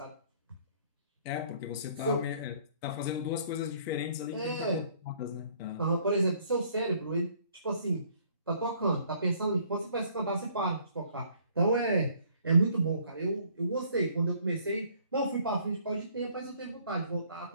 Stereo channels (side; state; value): both; inverted; correlation -0.60